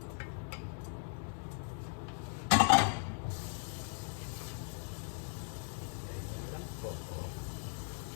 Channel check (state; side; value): silent; right; 52 dB below the other